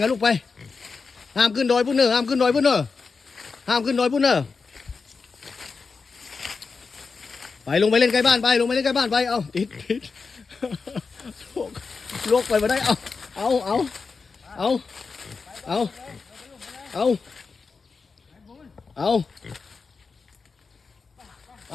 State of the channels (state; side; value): quieter; right; 4.7 dB